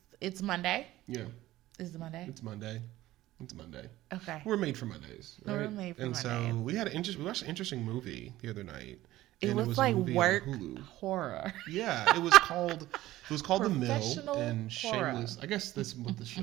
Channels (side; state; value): left; quieter; 15.9 dB